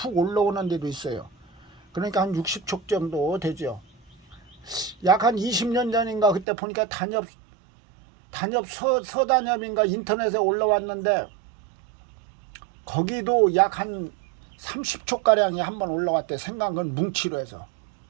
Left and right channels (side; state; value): left; drops out; at 6.5 s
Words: 올라오는 데도 있어요. 그러니까 한 60촉 정도 되죠. 약 한 20년 전인가 그때 보니까 단엽 서단엽인가 인터넷에 올라왔는데 거기도 약 한 30촉가량이 한번 올라왔대. 생강근 뭉치로 해서